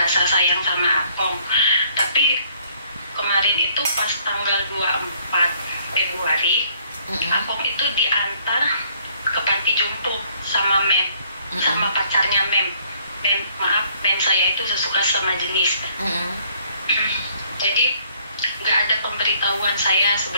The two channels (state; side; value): inverted; both; correlation -0.63